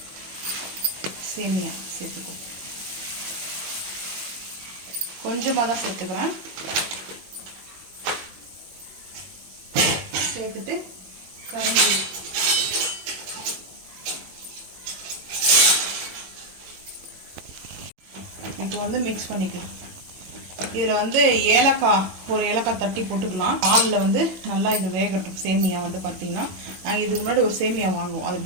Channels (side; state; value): left; late; 21 ms